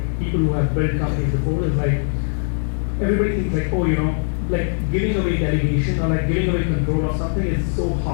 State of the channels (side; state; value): right; silent; digital silence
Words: people who have built companies before, is like everybody thinks like, oh, like giving away delegation or like giving away control of something is so